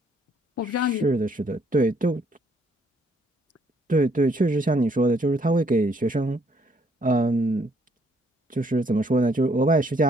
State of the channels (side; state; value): both; normal; correlation 0.68